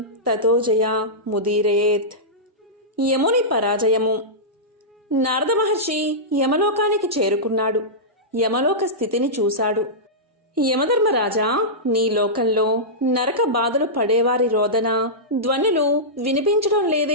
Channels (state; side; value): normal; both; correlation -0.14